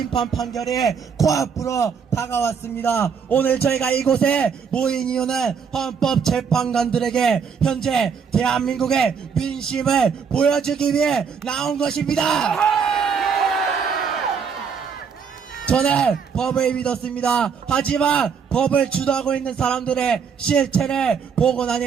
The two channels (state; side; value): quieter; left; 6.4 dB